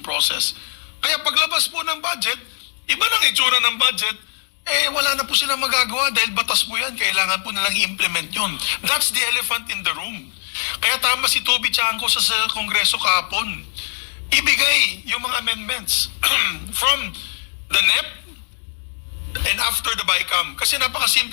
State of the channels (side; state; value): right; silent; 64 dB below the other